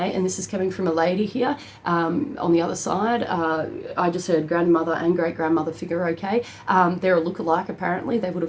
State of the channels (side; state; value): both; identical; correlation 1.00